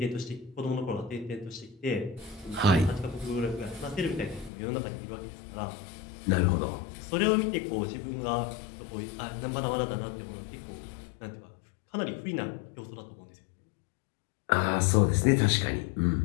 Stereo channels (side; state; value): right; drops out; at 4.5 s